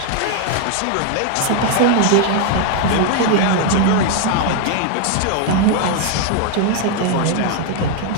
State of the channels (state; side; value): different; both; correlation 0.00